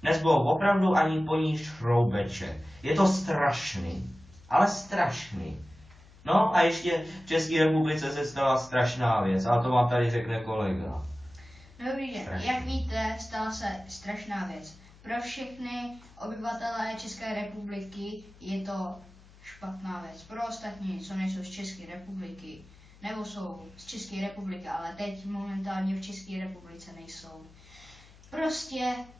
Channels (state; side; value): noise; left; hum, 24 dB below the sound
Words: Nezbylo opravdu ani po ní šroubeček. Je to strašný, ale strašný. No a ještě v České republice se stala strašná věc, ale to vám tady řekne kolega. Dobrý den, jak víte, stala se strašná věc. Pro všechny obyvatelé České republiky je to špatná věc. Pro ostatní, co nejsou z České republiky, nebo jsou z České republiky, ale teď momentálně v České republice nejsou. Prostě